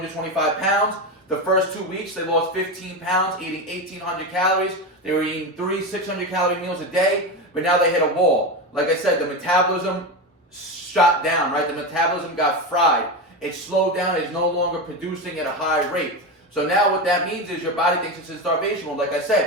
pounds. The first 2 weeks, they lost 15 pounds, eating 1,800 calories. They were eating 3 600-calorie meals a day, but now they hit a wall. Like I said, the metabolism shot down, right? The metabolism got fried. It slowed down. It's no longer producing at a high rate. So now what that means is your body thinks it's in starvation mode, like I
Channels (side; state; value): both; normal; correlation 0.18